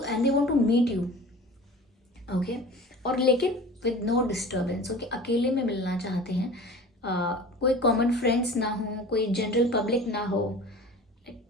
and they want to meet you, okay. और लेकिन विद नो डिस्टर्बेंस, ओके, अकेले में मिलना चाहते हैं, कोई कॉमन फ्रेंड्स ना हो, कोई जनरल पब्लिक ना हो,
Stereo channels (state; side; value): normal; both; correlation 0.40